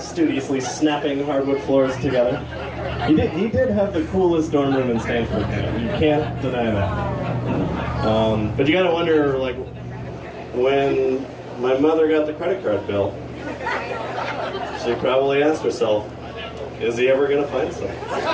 snapping hardwood floors together. He did have the coolest dorm room in Stanford. You can't deny that. But you gotta wonder, like, when my mother got the credit card bill, she probably asked herself, is he ever gonna find something?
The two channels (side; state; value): both; identical; correlation 1.00